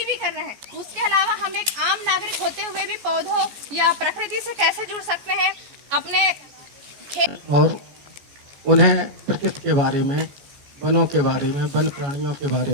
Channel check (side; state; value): left; late; 14 ms